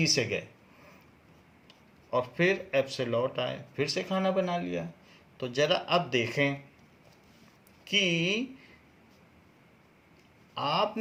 से गए और फिर एफ से लौट आए, फिर से खाना बना लिया। तो जरा अब देखें कि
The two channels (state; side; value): identical; both; correlation 1.00